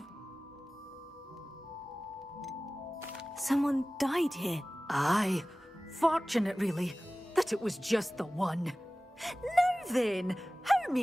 Someone died here. Aye. Fortunate, really, that it was just the one. Now then, how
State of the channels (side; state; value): both; normal; correlation 0.97